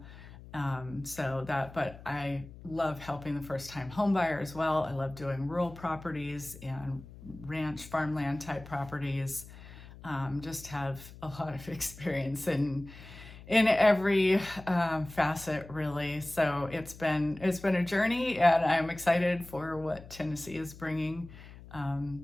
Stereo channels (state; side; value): noise; left; hum, 17 dB below the sound